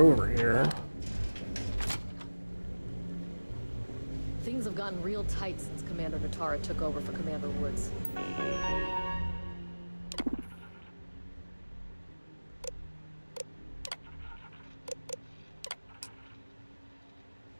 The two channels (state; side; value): inverted; both; correlation -1.00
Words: here. Things have gotten real tight since Commander Natara took over for Commander Woods.